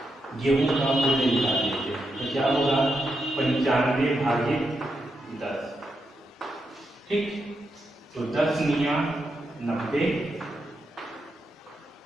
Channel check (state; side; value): normal; both; correlation 0.85